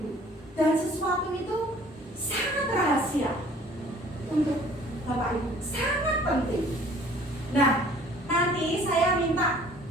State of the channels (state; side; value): normal; both; correlation 0.53